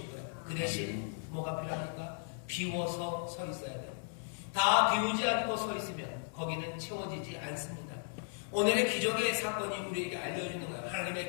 거예요. 그 대신 뭐가 필요합니까? 비워서 서 있어야 돼요. 다 비우지 않고 서 있으면 거기는 채워지지 않습니다. 오늘의 기적의 사건이 우리에게 알려주는 거예요.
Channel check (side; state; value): right; silent; digital silence